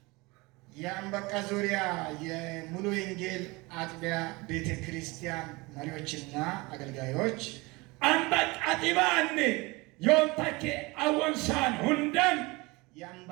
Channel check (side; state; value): left; quieter; 24.2 dB